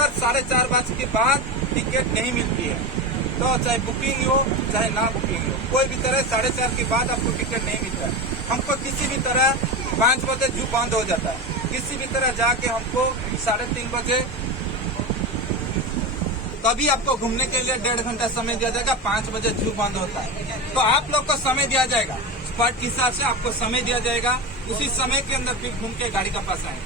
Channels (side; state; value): both; normal; correlation 0.21